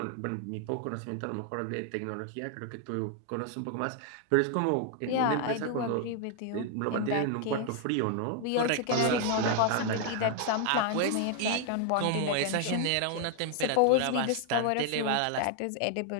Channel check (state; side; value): different; both; correlation 0.00